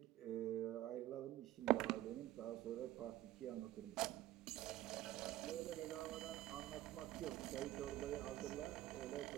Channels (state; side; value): quieter; left; 15.0 dB